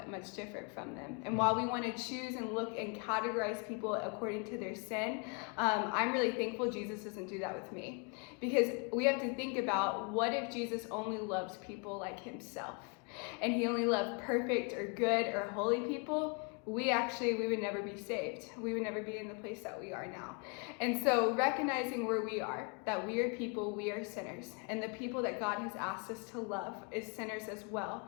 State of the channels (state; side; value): quieter; right; 34.7 dB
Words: much different from them. And while we want to choose and look and categorize people according to their sin, I'm really thankful Jesus doesn't do that with me. Because we have to think about, what if Jesus only loves people like himself? And he only loved perfect or good or holy people? We would never be saved. We would never be in the place that we are now. And so recognizing where we are, that we are people, we are sinners, and the people that God has asked us to love is sinners as well.